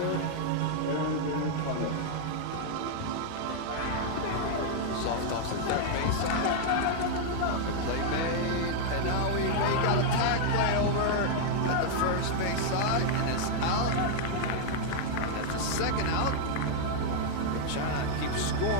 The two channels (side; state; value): both; different; correlation 0.00